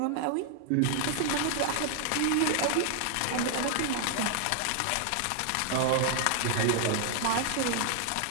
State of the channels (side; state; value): both; different; correlation 0.00